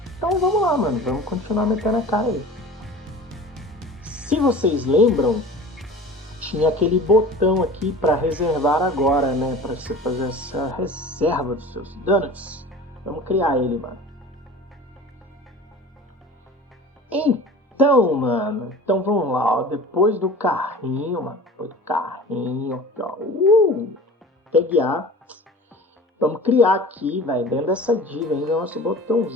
Então vamos lá, mano. Vamos continuar metendo a cara aí. Se vocês lembram, tinha aquele botão aqui para reservar agora, né? Para você fazer essa reserva dos seus donuts. Vamos criar ele, mano. Então, mano. Então vamos lá, ó. Depois do carrinho, mano. Depois do carrinho, aqui, ó. Tag A. Vamos criar aqui, velho, dentro dessa div ainda, nosso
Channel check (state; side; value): normal; both; correlation 0.39